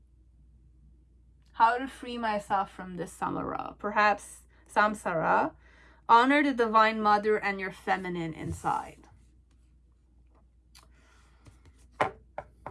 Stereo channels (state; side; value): identical; both; correlation 1.00